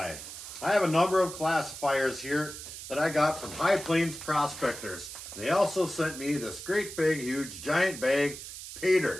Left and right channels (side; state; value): right; noise; hiss, 11 dB below the sound